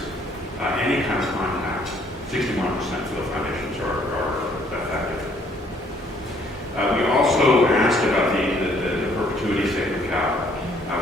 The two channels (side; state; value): both; normal; correlation 0.64